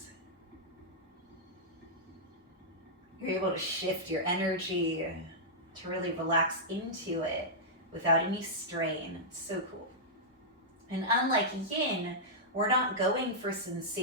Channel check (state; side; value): normal; both; correlation -0.10